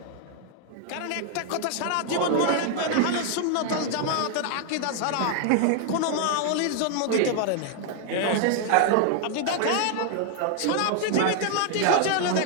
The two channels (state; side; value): different; both; correlation 0.00